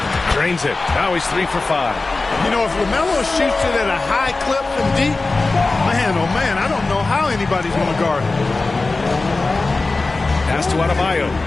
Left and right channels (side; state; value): right; quieter; 3.5 dB